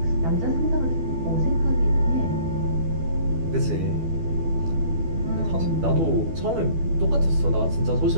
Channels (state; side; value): late; left; 12 ms